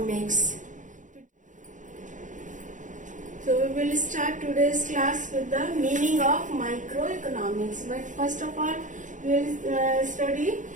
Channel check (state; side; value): late; left; 0.37 ms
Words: So we will start today's class with the meaning of microeconomics. But first of all, we will study